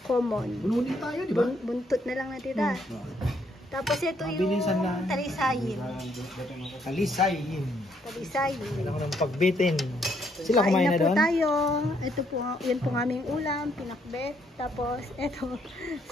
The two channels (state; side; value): normal; both; correlation 0.71